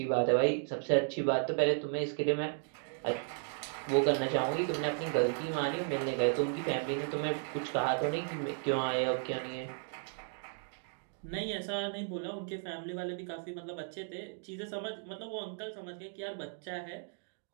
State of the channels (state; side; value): silent; left; 55 dB below the other